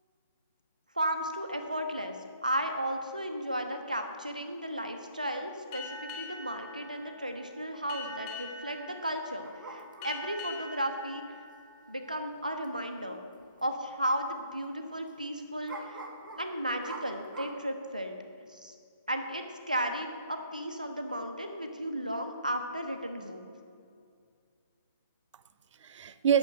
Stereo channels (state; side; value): inverted; both; correlation -0.60